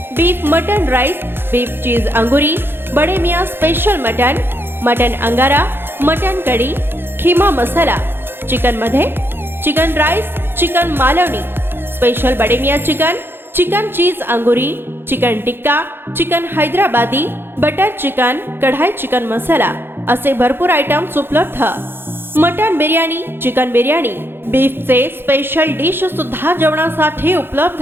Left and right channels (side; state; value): left; late; 0.10 ms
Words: beef mutton rice, beef cheese angoori, Bade Miyan special mutton, mutton angara, mutton kadhi, kheema masala. Chicken मध्ये chicken rice, chicken Malvani, special Bade Miyan chicken, chicken cheese angoori, chicken tikka, chicken Hyderabadi, butter chicken, kadai chicken masala असे भरपूर आयटम्स उपलब्ध। मटन बिर्याणी, चिकन बिर्याणी, बीफचे स्पेशल डिश सुद्धा जेवणासाठी